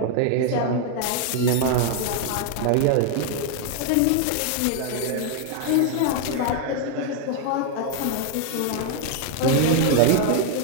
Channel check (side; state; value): both; different; correlation 0.00